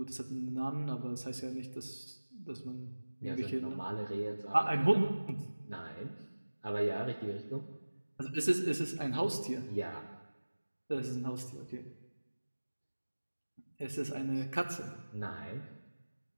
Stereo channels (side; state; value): both; inverted; correlation -1.00